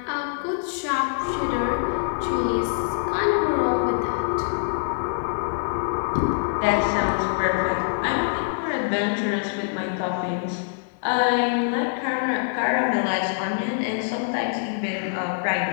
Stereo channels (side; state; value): right; silent; digital silence